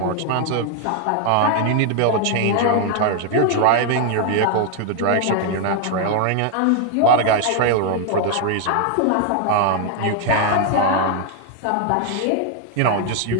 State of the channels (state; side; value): different; both; correlation 0.00